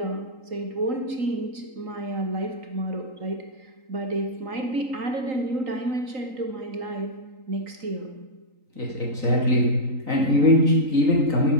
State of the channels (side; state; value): left; late; 3.9 ms